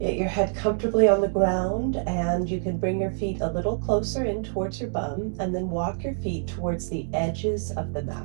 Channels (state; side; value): silent; left; digital silence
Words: your head comfortably on the ground, and you can bring your feet a little closer in towards your bum, and then walk your feet towards the edges of the